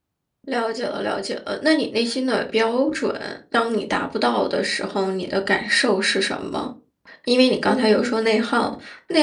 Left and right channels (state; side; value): identical; both; correlation 1.00